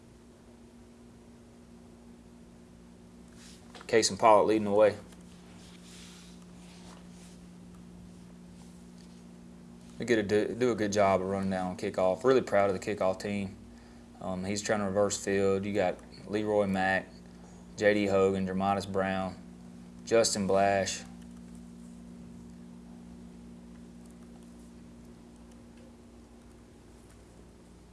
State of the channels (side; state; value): both; identical; correlation 1.00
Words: Case and Pollock leading the way. We do a good job of running down on kickoff. Really proud of the kickoff team. He's trying to reverse field. You got Leroy Mack, J.D. Hogan, Dramatis Brown, Justin Blash.